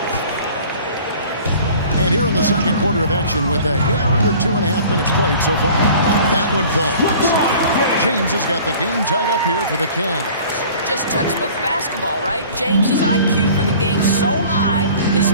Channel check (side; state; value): both; inverted; correlation -0.47